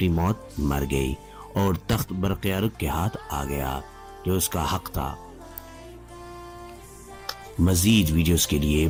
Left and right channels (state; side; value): identical; both; correlation 1.00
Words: موت مر گئی اور تخت برقیارق کے ہاتھ آ گیا جو اس کا حق تھا۔ مزید ویڈیوز کے لیے